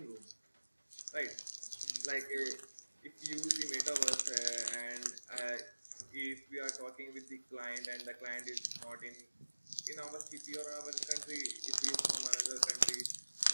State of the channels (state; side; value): inverted; both; correlation -1.00